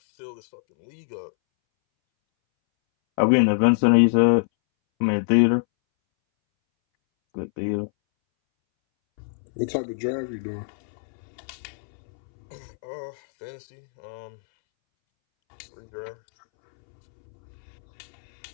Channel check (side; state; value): right; silent; 62 dB below the other